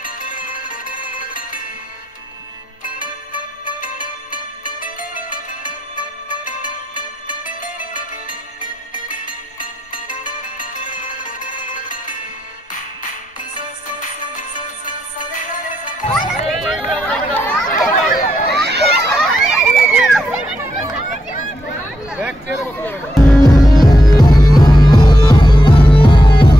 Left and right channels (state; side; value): normal; both; correlation 0.83